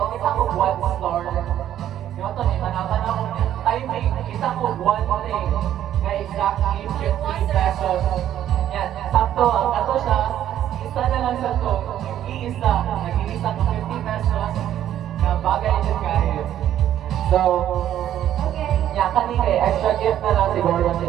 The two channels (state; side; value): quieter; left; 11.3 dB